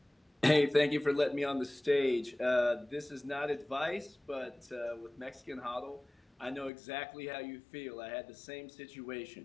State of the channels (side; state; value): right; drops out; at 6.7 s